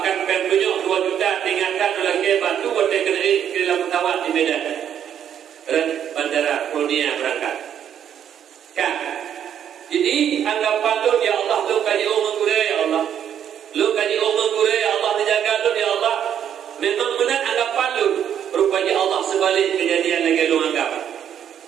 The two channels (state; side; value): quieter; left; 9.3 dB